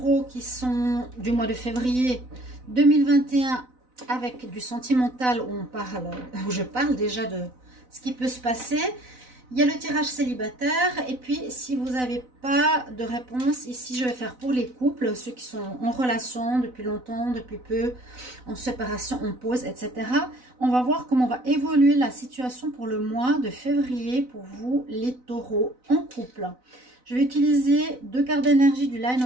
qui sont du mois de février 2021 avec du sentimental où je parle déjà de ce qui peut se passer. Il y a le tirage célibataire et puis si vous n'avez pas de réponse, ici je vais faire pour les couples, ceux qui sont en relation depuis longtemps, depuis peu, en séparation, en pause, etc. On va voir comment va évoluer la situation pour le mois de février pour vous les taureaux en couple. Je vais utiliser 2 cartes d'énergie du Line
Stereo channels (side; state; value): left; late; 4.0 ms